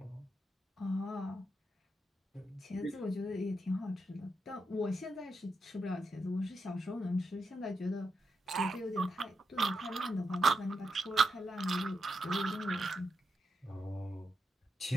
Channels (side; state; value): both; normal; correlation 0.85